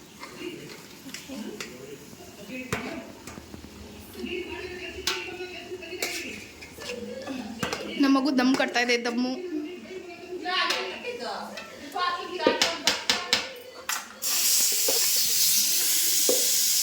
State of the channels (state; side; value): identical; both; correlation 1.00